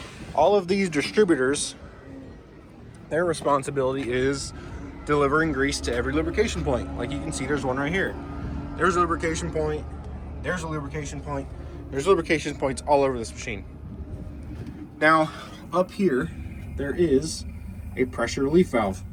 All of these distributors, their responsibility is delivering grease to every lubrication point. Like you can see, there's one right here. There's a lubrication point. There's a lubrication point. There's lubrication points all over this machine. Now, up here, there is a pressure relief valve.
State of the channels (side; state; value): both; identical; correlation 1.00